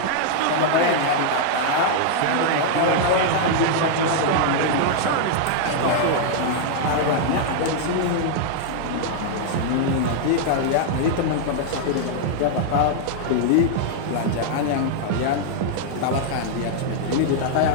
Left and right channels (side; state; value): both; different; correlation -0.01